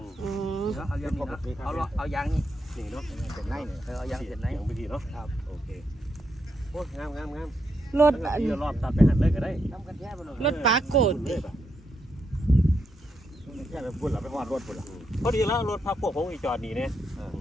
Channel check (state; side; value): normal; both; correlation 0.81